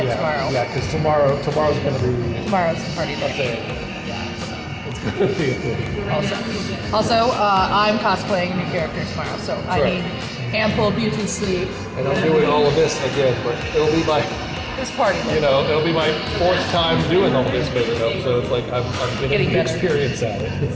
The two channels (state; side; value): identical; both; correlation 1.00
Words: Yeah, because tomorrow's going to be... Tomorrow's the party day. It's going to be a thing. Also, I'm cosplaying a new character tomorrow, so I need ample beauty sleep. And I'm doing all of this again, but it'll be my... This party. It'll be my 4th time doing all this big enough, so it's like I'm getting experience at it. It's